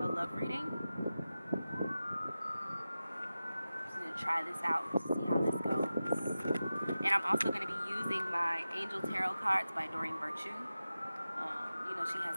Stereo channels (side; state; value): both; inverted; correlation -0.94